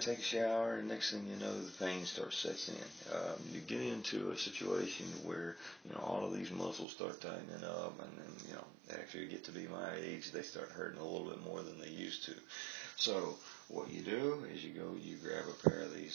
take a shower, and next thing you know, the pain sets in. You get into a situation where all of these muscles start tightening up, and then after you get to be my age, they start hurting a little bit more than they used to. So what you do is you grab a pair of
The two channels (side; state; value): left; drops out; at 6.9 s